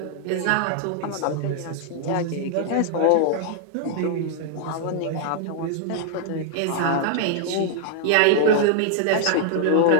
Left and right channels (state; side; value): different; both; correlation 0.00